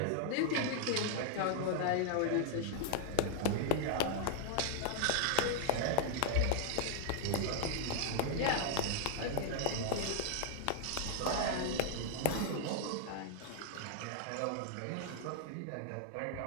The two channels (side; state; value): both; different; correlation 0.00